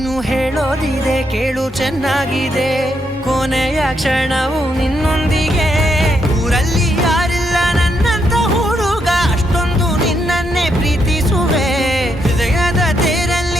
ಹೇಳೋದಿದೆ ಕೇಳು ಚೆನ್ನಾಗಿದೆ ಕೊನೆಯ ಕ್ಷಣವು ನಿನ್ನೊಂದಿಗೆ ಊರಲ್ಲಿ ಯಾರಿಲ್ಲ ನನ್ನಂತ ಹುಡುಗ ಅಷ್ಟೊಂದು ನಿನ್ನನ್ನೇ ಪ್ರೀತಿಸುವೆ ಹೃದಯದ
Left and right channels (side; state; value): both; normal; correlation 0.78